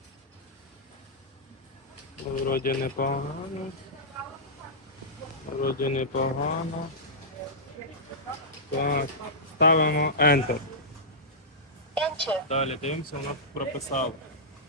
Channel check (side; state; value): both; normal; correlation -0.14